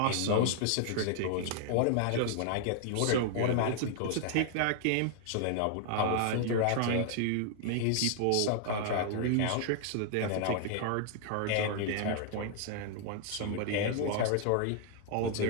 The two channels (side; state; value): both; different; correlation -0.01